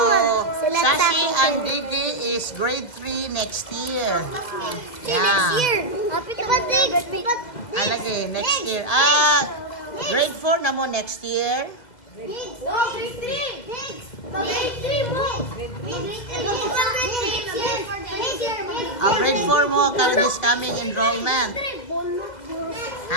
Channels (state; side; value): late; right; 2.0 ms